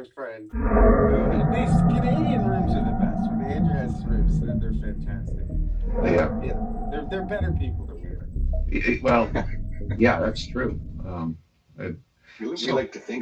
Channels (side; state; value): both; identical; correlation 1.00